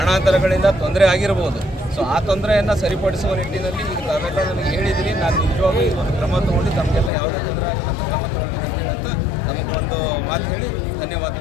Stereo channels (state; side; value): drops out; right; at 7.1 s